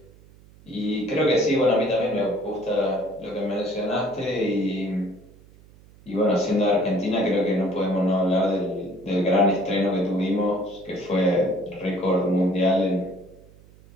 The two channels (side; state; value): right; noise; hum, 25 dB below the sound